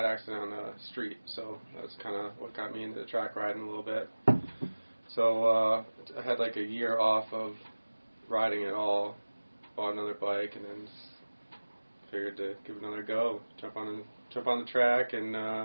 accident on the street, so that's kind of what got me into track riding a little bit. So I had like a year off of riding at all, bought another bike, and then figured to give it another go. Jump on the track, and a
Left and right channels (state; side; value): inverted; both; correlation -1.00